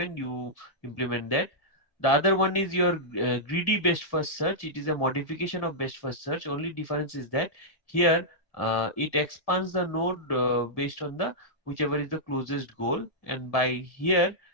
you implement that. The other one is your greedy best first search. It is a modification of best first search. Only difference is that here it expands the node based on the whichever is the closest goal. And by here,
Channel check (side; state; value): right; late; 1.9 ms